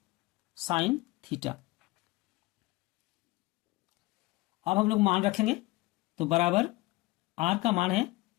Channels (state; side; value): quieter; right; 21.0 dB